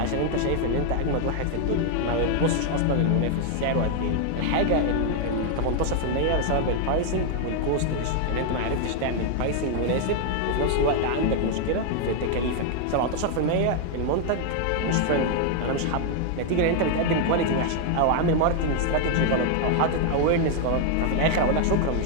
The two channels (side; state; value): both; different; correlation 0.00